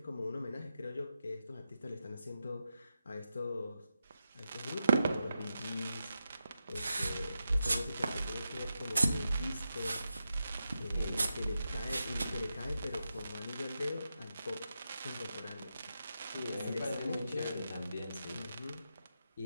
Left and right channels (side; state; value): both; inverted; correlation -0.88